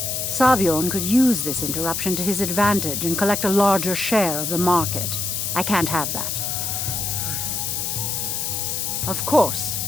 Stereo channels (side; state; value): left; noise; hiss, 1 dB below the sound